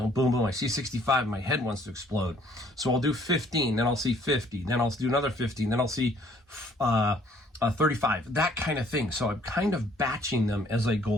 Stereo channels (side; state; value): both; normal; correlation 0.61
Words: boom, boom, I see 65 and my head wants to explode. So I'll do 15, then I'll see 50, then I'll do another 15, then I'll see 35, that kind of thing. So I'm kind of batching them as I go